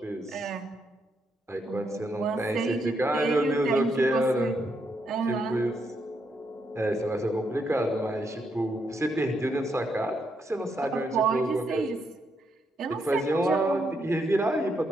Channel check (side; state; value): both; normal; correlation 0.78